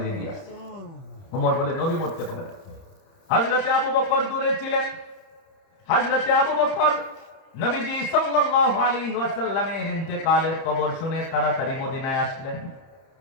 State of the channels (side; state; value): right; late; 30 ms